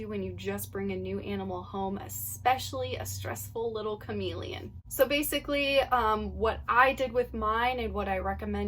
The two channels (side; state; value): both; identical; correlation 1.00